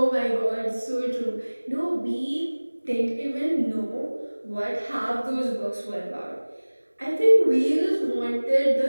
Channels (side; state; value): both; inverted; correlation -1.00